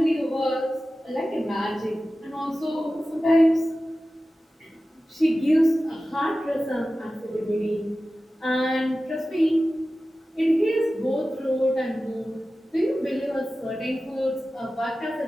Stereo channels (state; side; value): normal; both; correlation 0.95